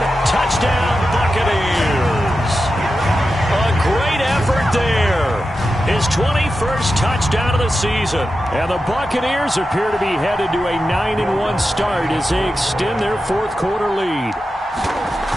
Touchdown, Buccaneers. A great effort there. His 21st touchdown of the season. And the Buccaneers appear to be headed to a 9-1 start as they extend their 4th quarter lead.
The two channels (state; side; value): normal; both; correlation 0.91